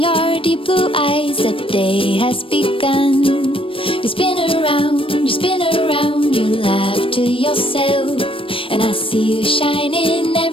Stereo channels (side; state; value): right; late; 0.26 ms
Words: deep blue eyes. The day has begun. You spin around, you laugh to yourself. And I see you shine in